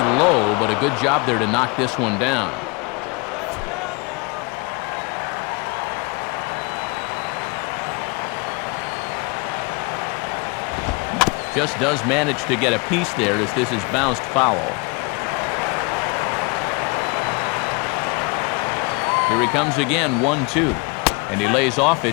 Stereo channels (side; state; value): right; quieter; 29.3 dB